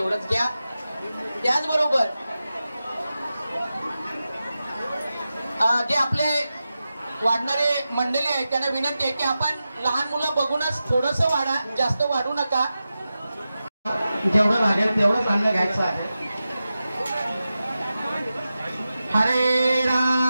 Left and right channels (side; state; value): both; inverted; correlation -0.92